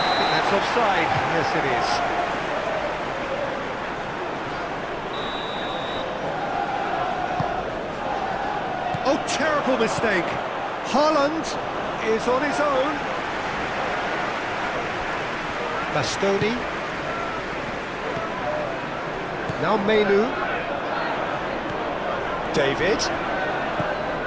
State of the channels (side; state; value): both; identical; correlation 1.00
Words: I think that's offside. Yes, it is. Oh, terrible mistake. Haaland is on his own. Bastoni. Now Menu. David.